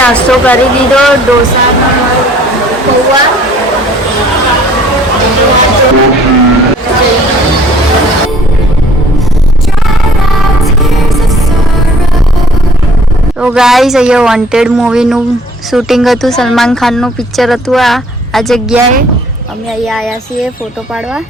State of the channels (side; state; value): both; normal; correlation 0.56